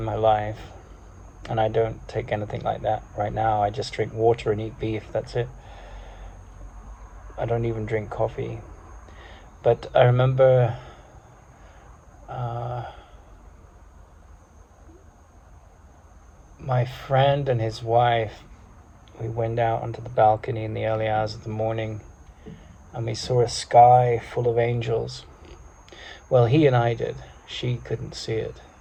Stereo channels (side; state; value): both; identical; correlation 1.00